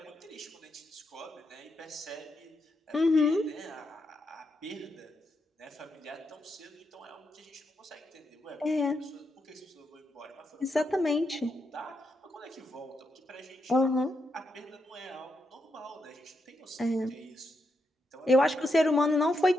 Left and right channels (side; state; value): both; normal; correlation 0.82